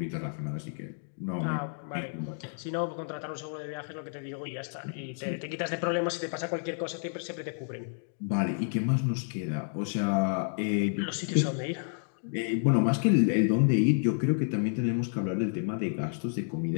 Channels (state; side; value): silent; right; digital silence